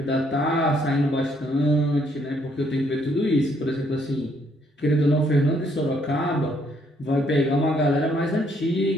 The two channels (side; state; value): both; normal; correlation 0.69